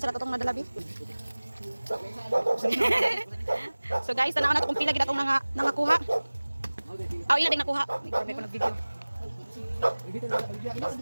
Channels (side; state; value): both; inverted; correlation -1.00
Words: sa natutong madalabi. So guys, tanaw na kung pila gid atong nangakuha. Aw, ila din nakuha. May ko nag-video.